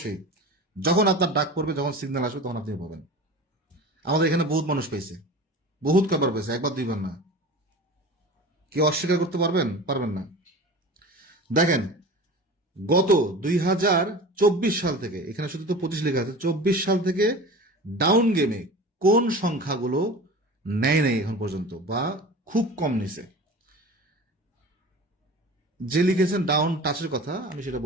যখন আপনার ডাক পড়বে, যখন সিগন্যাল আসবে, তখন আপনি পাবেন। আমাদের এখানে বহুত মানুষ পেয়েছে, বহুত কবার পেয়েছে, একবার 2বার না। কেউ অস্বীকার করতে পারবেন? পারবেন না। দেখেন, গত 2024 সাল থেকে, এখানে শুধু তো 25 লেখা আছে, 24 সাল থেকে ডাউন গেমে কোন সংখ্যাগুলো নেয় নাই এখন পর্যন্ত বা খুব কম নিছে? যে লিখেছেন ডাউন টাচের কথা, আমি সেটা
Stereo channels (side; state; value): both; normal; correlation 0.35